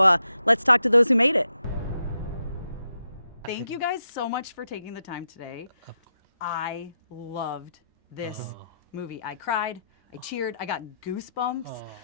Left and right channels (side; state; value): both; inverted; correlation -0.84